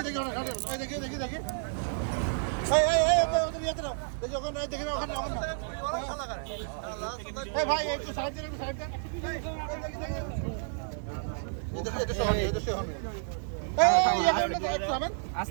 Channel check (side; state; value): left; silent; 57 dB below the other